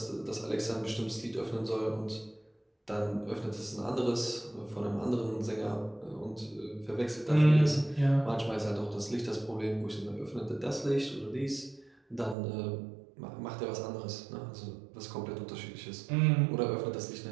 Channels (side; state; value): left; drops out; at 12.4 s